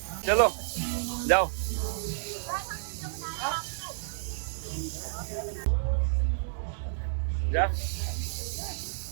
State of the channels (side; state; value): left; silent; digital silence